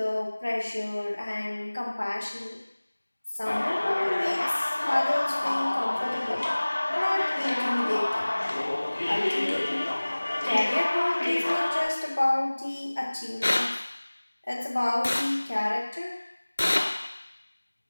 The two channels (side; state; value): both; inverted; correlation -1.00